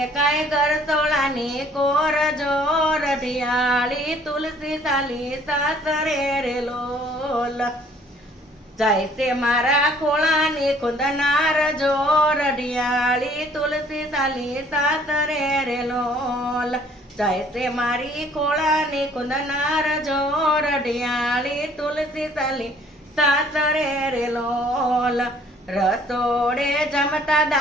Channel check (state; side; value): normal; both; correlation 0.58